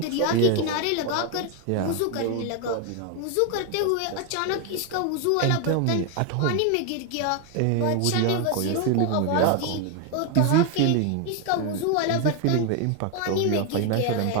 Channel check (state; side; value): different; both; correlation 0.01